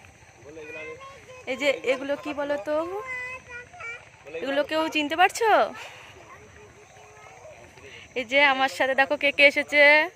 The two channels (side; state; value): both; identical; correlation 1.00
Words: এই যে এগুলো কি বলো তো, এগুলো কেউ চিনতে পারছো? এই যে আমার সাথে দেখো কে কে এসেছে।